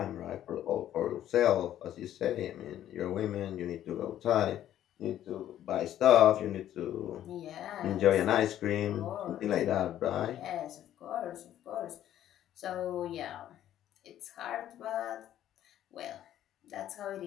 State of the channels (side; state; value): right; quieter; 11.8 dB